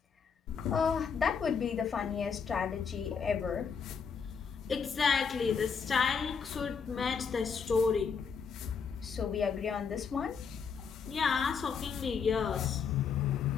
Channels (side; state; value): right; quieter; 6.2 dB